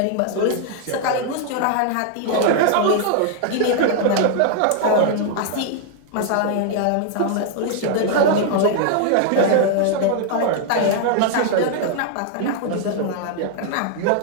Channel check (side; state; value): both; different; correlation 0.00